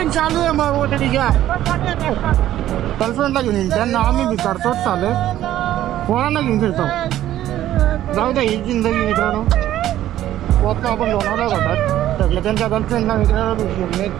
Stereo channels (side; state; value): left; quieter; 13.0 dB